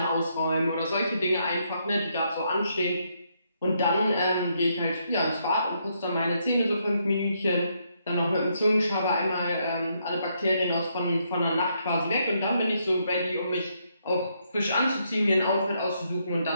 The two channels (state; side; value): inverted; both; correlation -0.76